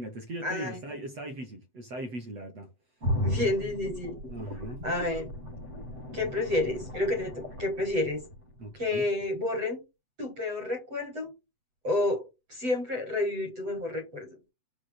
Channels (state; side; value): late; left; 7.9 ms